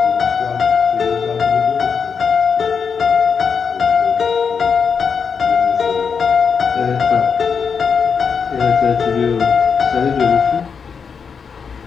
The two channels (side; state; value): right; quieter; 6.2 dB